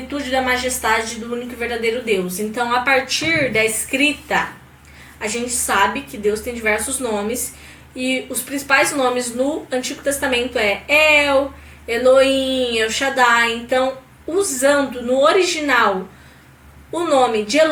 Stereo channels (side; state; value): both; identical; correlation 1.00